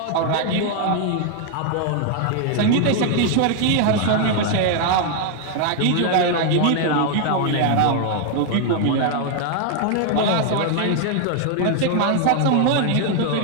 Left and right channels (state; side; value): different; both; correlation 0.00